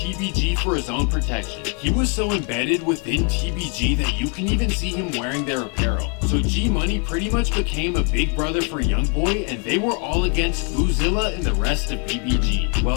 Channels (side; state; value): right; quieter; 37.4 dB